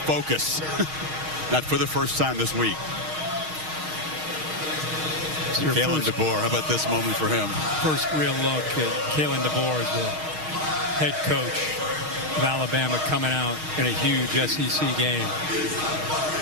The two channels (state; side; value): late; left; 6.4 ms